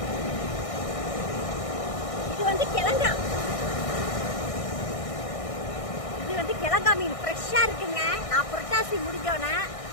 இது வந்து கிழங்கா, கிழங்கா மீன் ஃப்ரெஷ்ஷாக இருக்குங்க. நான் புரட்டாசி முடிஞ்சோன்னே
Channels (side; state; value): right; late; 1.6 ms